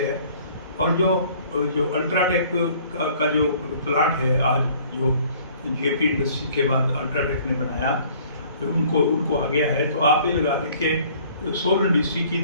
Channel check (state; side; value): inverted; both; correlation -0.55